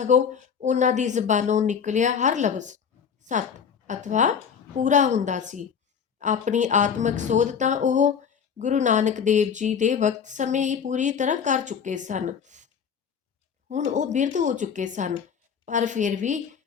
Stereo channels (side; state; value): right; quieter; 7.1 dB